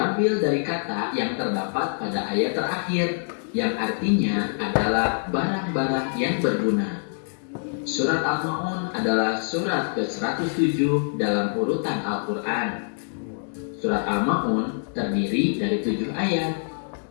dari kata yang terdapat pada ayat terakhir, yang artinya adalah barang-barang yang berguna. Surat Al-Ma'un adalah surat ke-107 dalam urutan Al-Quran. Surat Al-Ma'un terdiri dari 7 ayat.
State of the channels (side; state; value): right; silent; digital silence